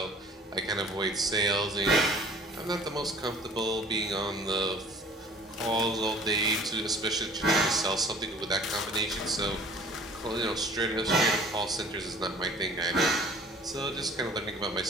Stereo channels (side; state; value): both; normal; correlation 0.49